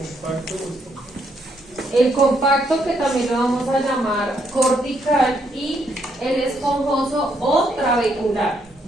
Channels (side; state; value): both; normal; correlation 0.74